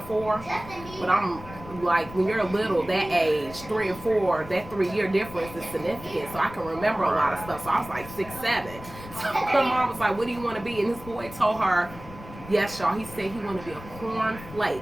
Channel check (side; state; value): left; noise; rumble, 15 dB below the sound